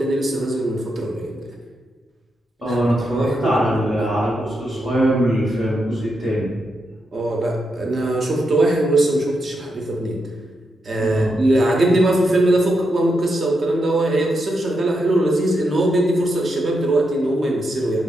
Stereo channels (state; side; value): normal; both; correlation 0.84